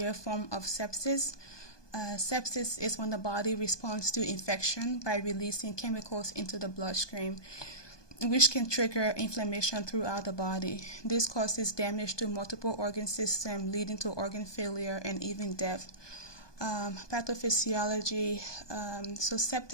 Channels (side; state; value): right; late; 1.2 ms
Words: form of sepsis. Sepsis is when the body responds to infection by releasing chemicals into the bloodstream, which can trigger inflammation throughout the body. This causes damage to multiple organ systems, leading to organ failure and even death. Pathophysiology. So